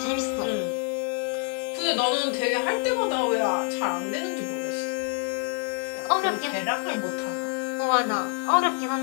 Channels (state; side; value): quieter; right; 38.8 dB